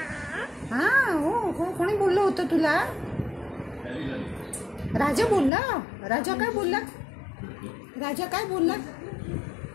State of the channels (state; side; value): drops out; right; at 5.5 s